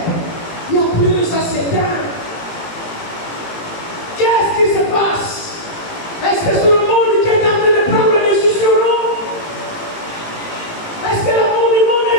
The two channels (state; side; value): late; right; 18 ms